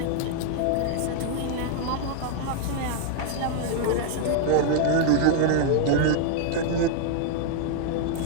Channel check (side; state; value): both; different; correlation 0.00